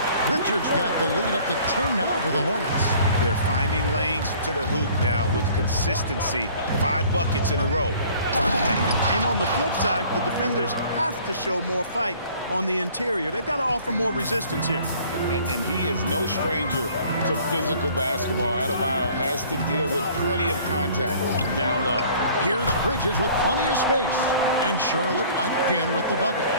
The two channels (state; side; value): inverted; both; correlation -0.52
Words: Richards got the lead up to 10 now for the Hornets. They're finding lanes to the hoop now with consistency. 5 buckets in a row. And on the flip side, the defenders have to show more fight on the interior. They've got to offer more resistance here. And he is no stranger to physical basketball. Adebayo has to deal with plenty of contact down low. Here's Bridges with plenty of space. And Charlotte again with the bucket.